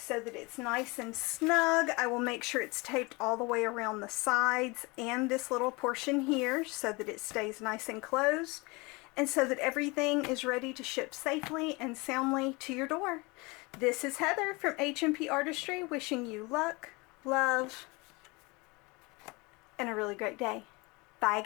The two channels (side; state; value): right; quieter; 26.1 dB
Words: that it's nice and snug. I will make sure it's taped all the way around the sides and this little portion here so that it stays nice and closed, and so that everything is ready to ship safely and soundly to your door. This is Heather from H&P Artistry, wishing you luck, love, and a really great day. Bye